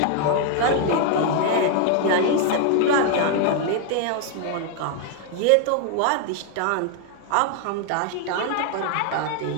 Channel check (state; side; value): different; both; correlation 0.00